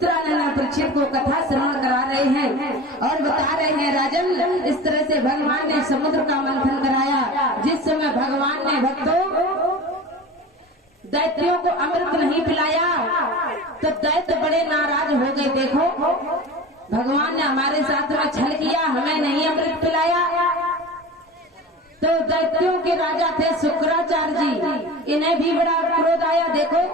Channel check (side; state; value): both; normal; correlation 0.34